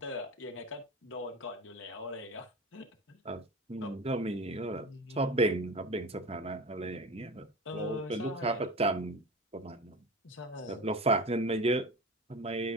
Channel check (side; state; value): both; normal; correlation 0.31